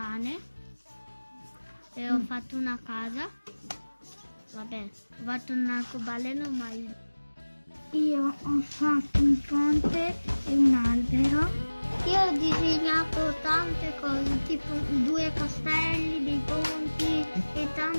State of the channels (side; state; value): both; inverted; correlation -1.00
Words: e ho fatto una casa. Vabbè, ho fatto un arcobaleno, ma io ho fatto un ponte e un albero. Io ho disegnato tante cose, tipo 2 castelli, dei ponti e